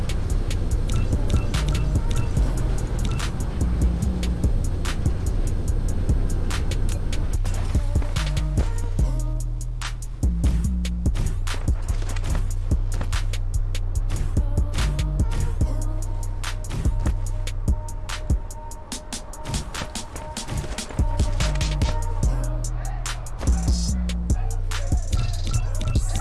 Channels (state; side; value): identical; both; correlation 1.00